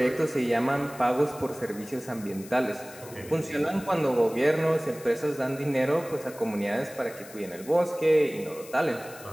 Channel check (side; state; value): left; noise; hiss, 18 dB below the sound